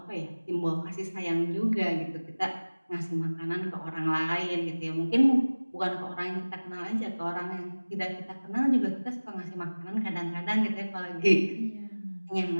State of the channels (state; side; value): inverted; both; correlation -1.00